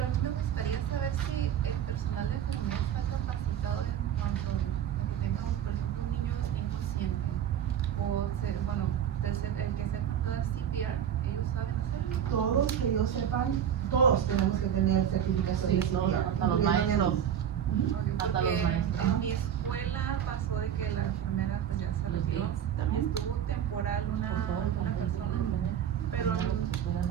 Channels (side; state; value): left; quieter; 9.4 dB